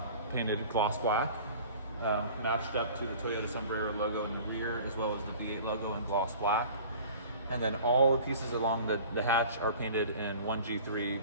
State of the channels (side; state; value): both; inverted; correlation -0.43